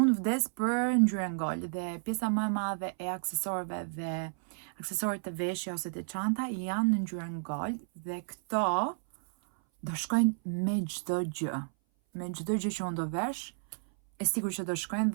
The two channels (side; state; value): left; silent; 57 dB below the other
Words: vdes për ngjyrën gold dhe pjesa më e madhe e aksesorëve dhe aksesorit të veshje ose të çanta janë në ngjyrën gold dhe këto do shkojnë me çdo gjë. Me çdo gjë që unë do vesh, e sigurt që do